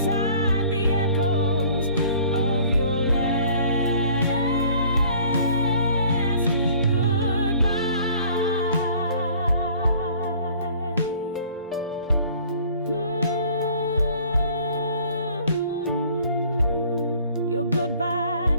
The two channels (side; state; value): both; inverted; correlation -0.53